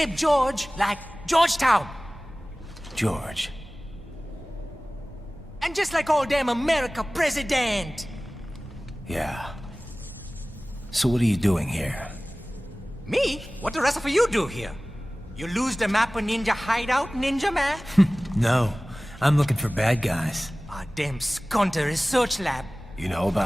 George, like Georgetown. George. And just like all damn America president. Yeah. So what are you doing here? Me? What the rest of you do here? You lose the map of Ninja hideout, Ninja man? No, I'm looking for bad guys. Ah, damn skunter research lab. You know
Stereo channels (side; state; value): both; normal; correlation 0.98